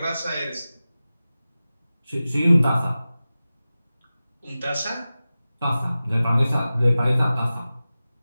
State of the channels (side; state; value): both; inverted; correlation -0.95